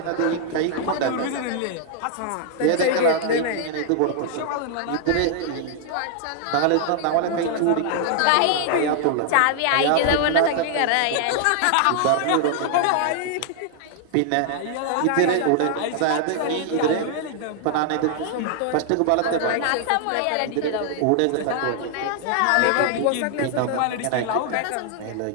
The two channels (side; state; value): both; different; correlation 0.00